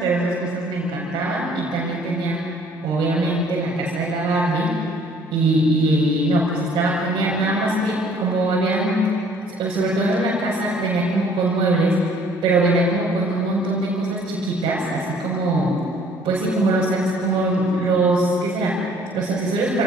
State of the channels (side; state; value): both; normal; correlation 0.57